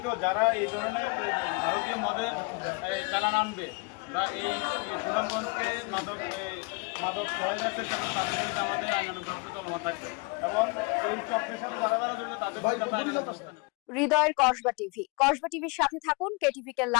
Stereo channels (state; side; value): quieter; right; 30.6 dB